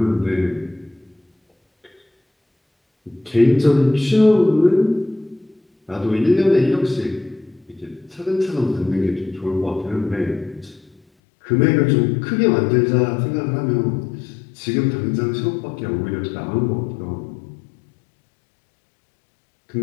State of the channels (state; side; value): drops out; right; at 11.0 s